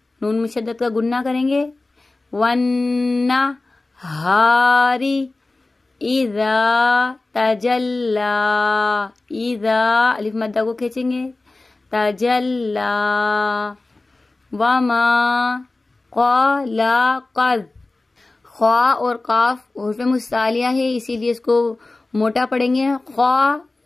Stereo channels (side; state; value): right; quieter; 3.1 dB